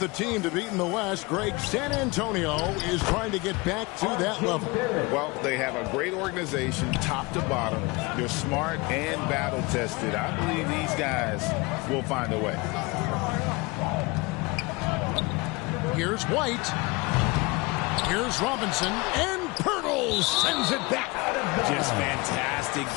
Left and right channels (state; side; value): quieter; right; 25.2 dB